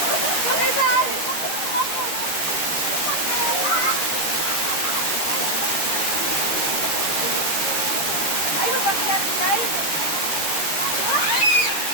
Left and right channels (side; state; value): right; late; 13 ms